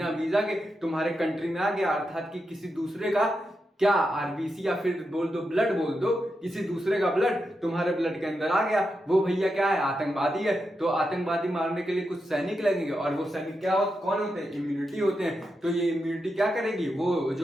वीजा के तुम्हारे कंट्री में आ गया, अर्थात कि किसी दूसरे का क्या आरबीसी या फिर बोल दो ब्लड, बोल दो किसी दूसरे का ब्लड तुम्हारे ब्लड के अंदर आ गया, वो भैया क्या है? आतंकवादी है। तो आतंकवादी मारने के लिए कुछ सैनिक लगेंगे, और वो सैनिक क्या कौन होते हैं? इम्यूनिटी होते हैं। तो ये इम्यूनिटी क्या करेगी? वो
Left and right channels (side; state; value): both; normal; correlation 0.87